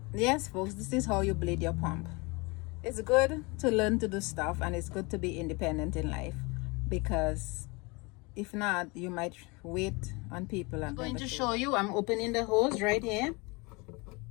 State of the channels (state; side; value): quieter; right; 27.0 dB